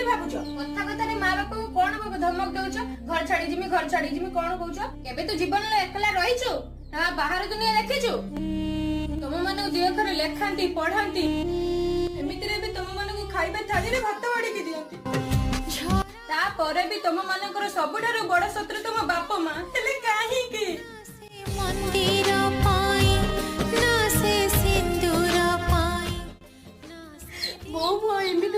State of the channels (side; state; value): both; identical; correlation 1.00